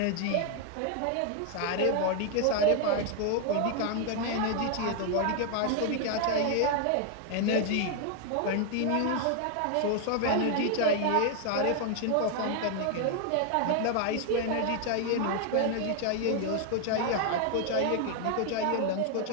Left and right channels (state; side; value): different; both; correlation 0.00